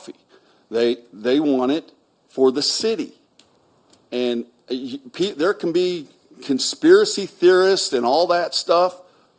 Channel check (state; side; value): identical; both; correlation 1.00